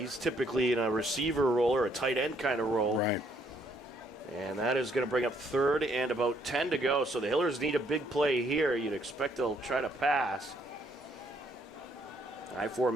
typically in a receiver role or a tight end kind of role. Right. And that is going to bring up 3rd and about 10 to go. So the Hillers need a big play here. You'd expect they'll try to pass. I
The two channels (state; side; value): normal; both; correlation 0.69